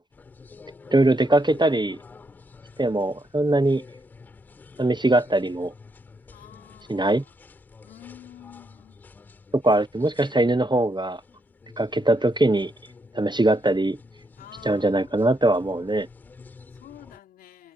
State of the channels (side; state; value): both; normal; correlation 0.78